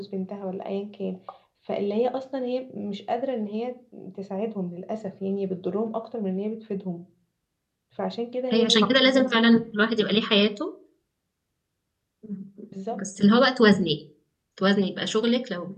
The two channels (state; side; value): identical; both; correlation 1.00